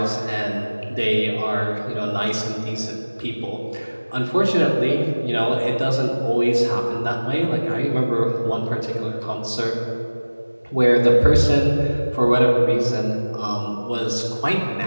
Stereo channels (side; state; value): both; inverted; correlation -1.00